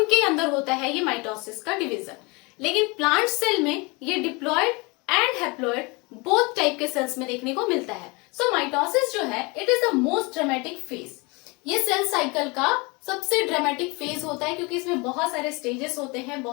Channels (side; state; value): right; quieter; 27.2 dB